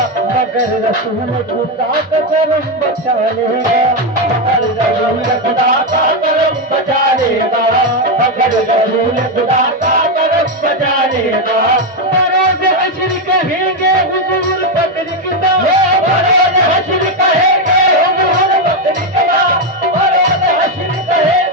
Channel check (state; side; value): normal; both; correlation 0.07